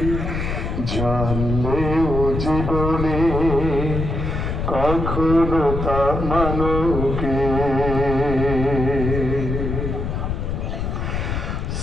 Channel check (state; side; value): noise; left; rumble, 3 dB below the sound